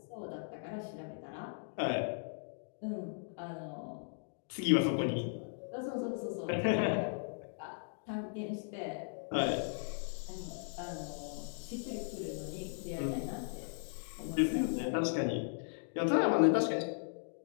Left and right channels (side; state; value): right; silent; digital silence